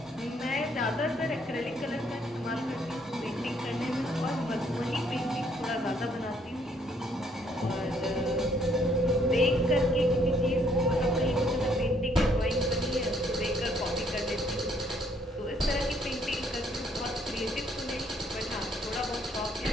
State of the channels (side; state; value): both; normal; correlation 0.67